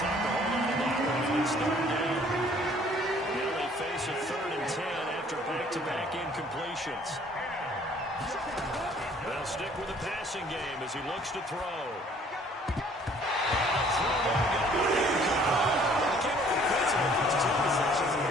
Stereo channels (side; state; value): both; normal; correlation 0.57